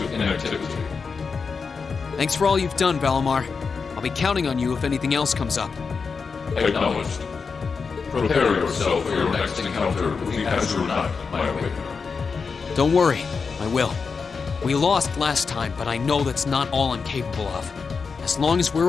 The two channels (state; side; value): quieter; right; 5.2 dB